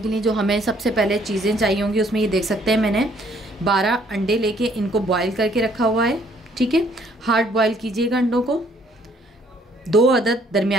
लिए जो हमें सबसे पहले चीज़ें चाहिए होंगी उसमें ये देख सकते हैं मैंने 12 अंडे लेके इनको बॉयल करके रखा हुआ है। ठीक है, हार्ड बॉयल कीजिएगा अंडों को। 2 अदद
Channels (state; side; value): normal; both; correlation 0.64